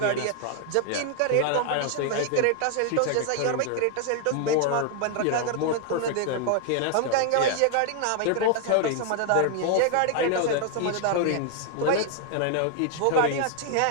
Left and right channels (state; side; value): different; both; correlation 0.00